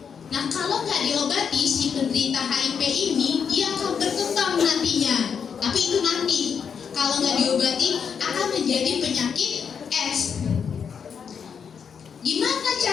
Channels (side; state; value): right; quieter; 6.8 dB